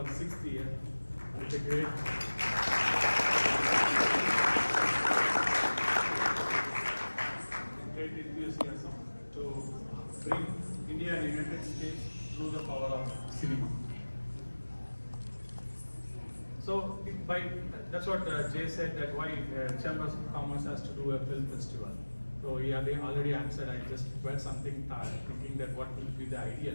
6th year. It's a great enthusiasm to bring India and United States through the power of cinema. So that's what Jay said, that why Chambers of Commerce has to do a film festival. So he already answered. I just read something thinking that what will be the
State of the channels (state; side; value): inverted; both; correlation -1.00